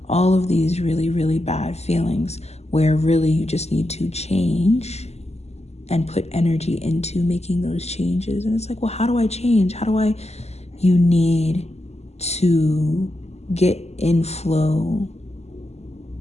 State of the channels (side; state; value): right; late; 0.31 ms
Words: All of these really, really bad feelings, where really you just need to change and put energy into making those changes. And it's like, well, how do I change? You need to get in flow.